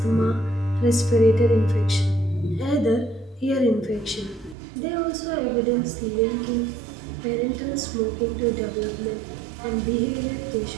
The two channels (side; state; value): left; drops out; at 4.5 s